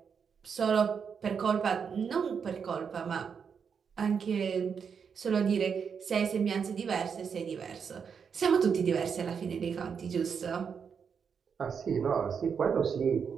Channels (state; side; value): quieter; left; 6.6 dB